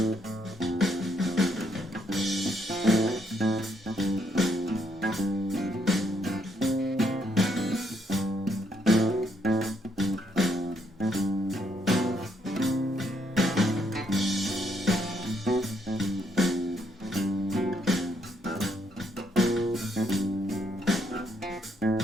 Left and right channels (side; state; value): both; normal; correlation 0.73